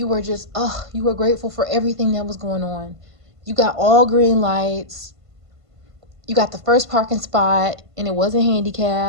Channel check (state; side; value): late; left; 1.5 ms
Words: were just, you were grateful for everything that was going on. You got all green lights, you got the first parking spot, and it wasn't